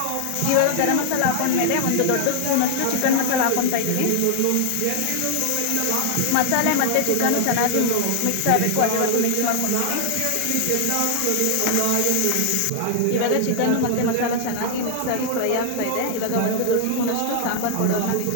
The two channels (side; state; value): both; different; correlation 0.00